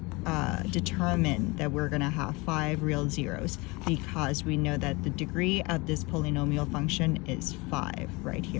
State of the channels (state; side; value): quieter; right; 25.4 dB